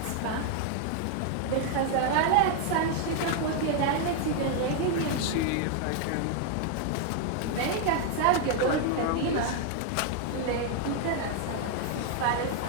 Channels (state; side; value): different; both; correlation 0.00